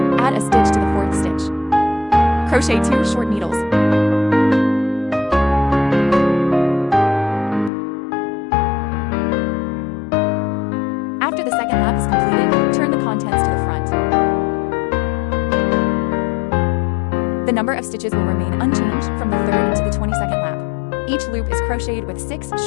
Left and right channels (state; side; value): drops out; right; at 7.7 s